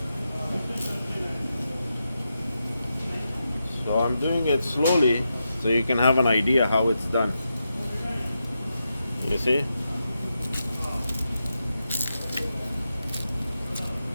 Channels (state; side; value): inverted; both; correlation -0.87